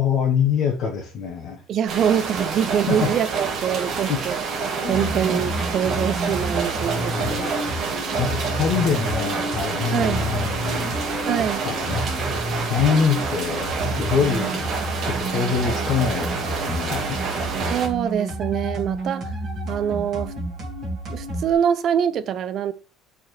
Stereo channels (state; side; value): normal; both; correlation 0.54